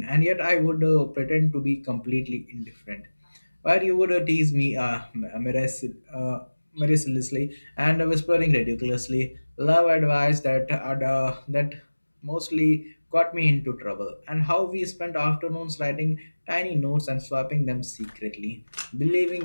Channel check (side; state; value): both; inverted; correlation -1.00